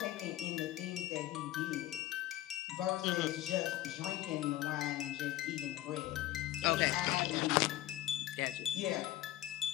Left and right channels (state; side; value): quieter; right; 14.8 dB